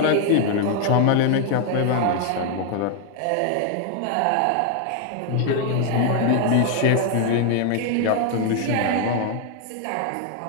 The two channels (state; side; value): different; both; correlation 0.00